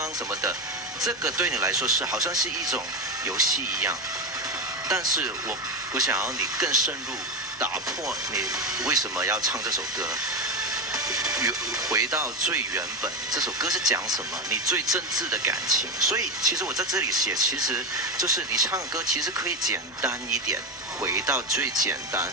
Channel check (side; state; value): both; normal; correlation 0.15